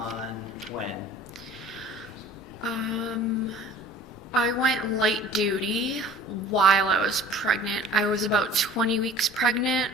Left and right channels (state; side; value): normal; both; correlation 0.46